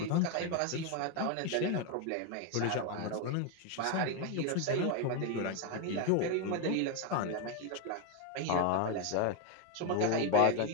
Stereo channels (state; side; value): different; both; correlation 0.02